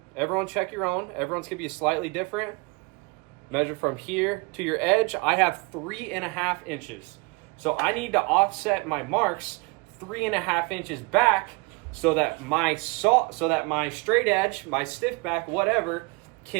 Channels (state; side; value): quieter; left; 27.9 dB